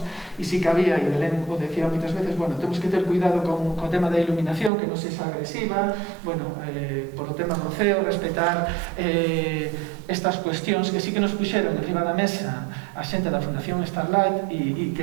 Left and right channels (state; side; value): drops out; left; at 4.7 s